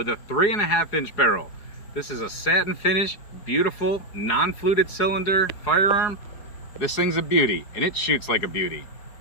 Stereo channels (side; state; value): right; late; 4.7 ms